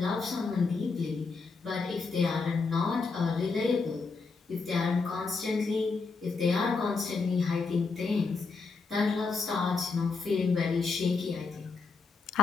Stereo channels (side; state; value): right; quieter; 4.4 dB